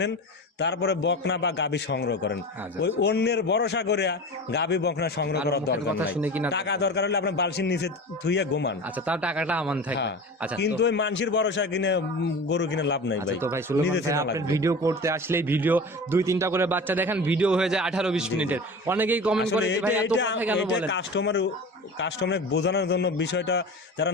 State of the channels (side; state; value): both; normal; correlation 0.33